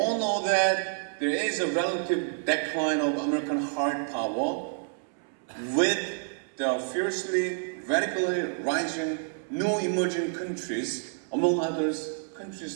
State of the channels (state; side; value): silent; left; 59 dB below the other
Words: know that there is a relative decline of American hard power with the fiercely, radically rising new emerging countries, among others,